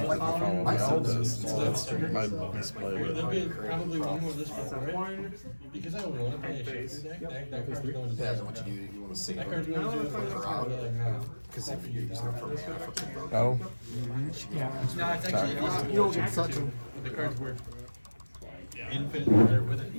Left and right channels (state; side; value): inverted; both; correlation -1.00